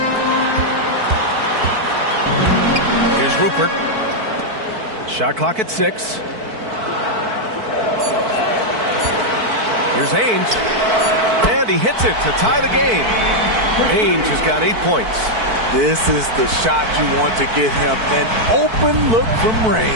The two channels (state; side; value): late; left; 4.5 ms